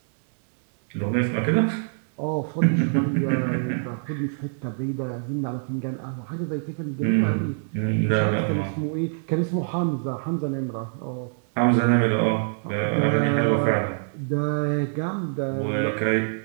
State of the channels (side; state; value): left; silent; digital silence